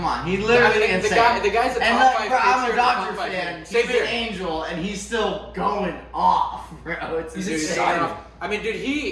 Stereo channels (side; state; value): both; identical; correlation 1.00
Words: on. He literally the guy's a top 5 pitcher. I'm a Dodger fan. Same He's here. an angel, and he's still going off, bro. He's insane. I mean, dude,